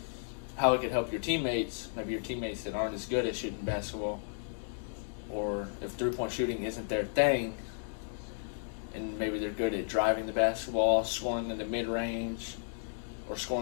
How it could help your teammates, maybe your teammates that aren't as good at shooting basketball, or if three-point shooting isn't their thing, and maybe they're good at driving the basketball, scoring in the mid-range, or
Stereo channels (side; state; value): right; silent; digital silence